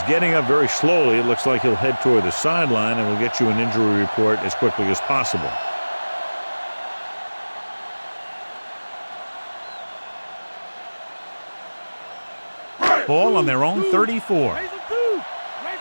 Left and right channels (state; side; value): inverted; both; correlation -1.00